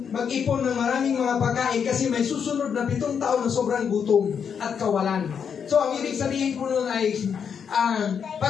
mag-ipon ng maraming mga pagkain kasi may susunod na 7 taon na sobrang gutom at kawalan. So, ang ibig sabihin po nun ay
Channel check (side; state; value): right; quieter; 7.2 dB